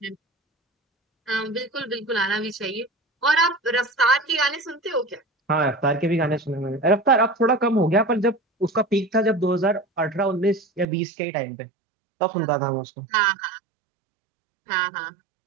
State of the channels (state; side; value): drops out; left; at 10.9 s